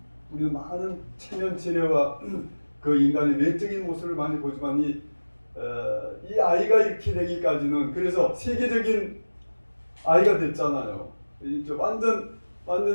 우리는 많은 체면체례와 그 인간의 외적인 모습을 많이 보지만 이 아이가 이렇게 되기까지는, 그래서 세계적인 아이가 됐잖아요. 이제 완전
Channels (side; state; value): both; inverted; correlation -1.00